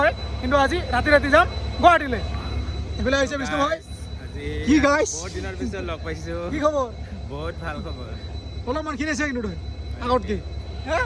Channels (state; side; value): identical; both; correlation 1.00